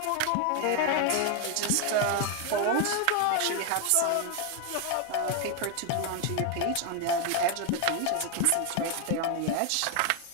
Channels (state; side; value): different; both; correlation 0.01